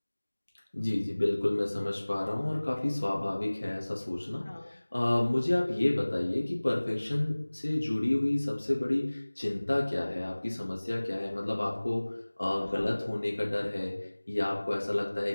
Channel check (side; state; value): both; inverted; correlation -1.00